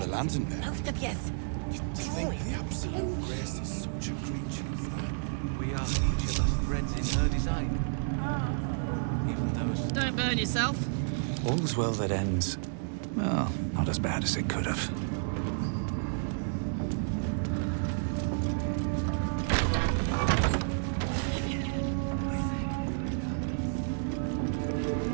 lantern there. Both of you, drawing We are each of us threads in her design. Even those... Don't burn yourself. All's well that ends. Well, not as bad as it could have.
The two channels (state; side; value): silent; left; digital silence